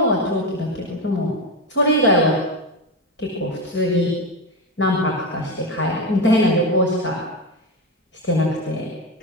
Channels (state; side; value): normal; both; correlation 0.16